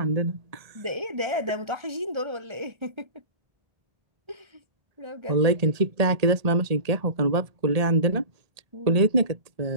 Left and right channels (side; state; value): left; late; 1.8 ms